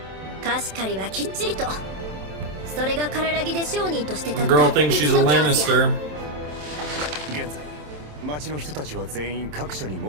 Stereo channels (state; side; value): late; left; 27 ms